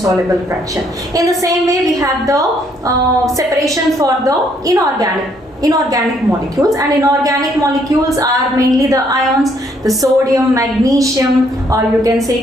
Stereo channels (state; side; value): normal; both; correlation 0.68